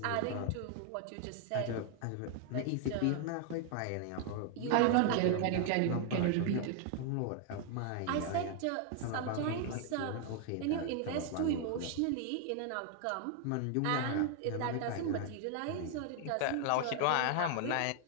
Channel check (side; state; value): both; different; correlation 0.00